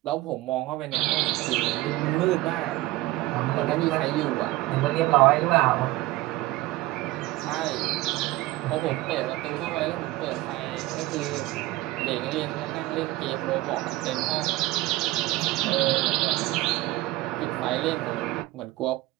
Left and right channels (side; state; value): left; quieter; 18.2 dB